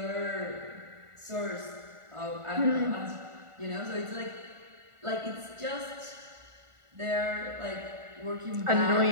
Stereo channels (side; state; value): left; late; 1.4 ms